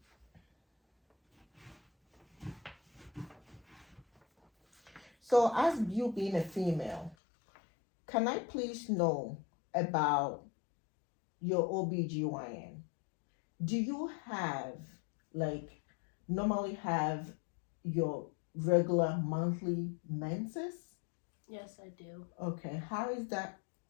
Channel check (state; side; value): drops out; right; at 7.2 s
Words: So, as you being a female, can I please know about your OBGYN? Do you have, like, normally have your regular monthly menses? Yes, I do. Okay, how is that